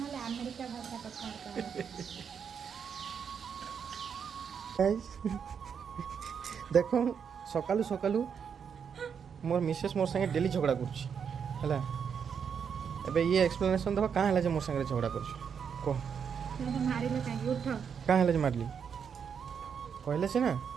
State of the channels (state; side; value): quieter; left; 7.1 dB